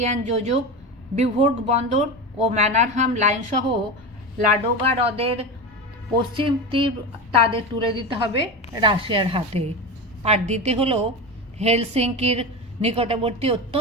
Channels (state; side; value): normal; both; correlation 0.23